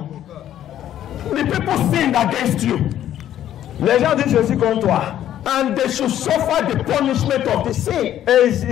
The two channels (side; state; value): right; quieter; 11.4 dB